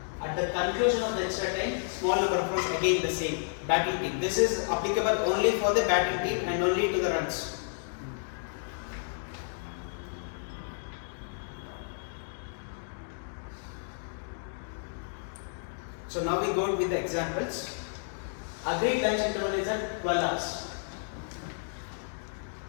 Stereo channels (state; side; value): silent; right; digital silence